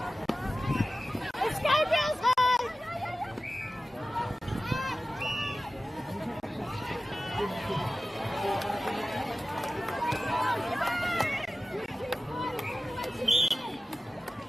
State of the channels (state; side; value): normal; both; correlation 0.96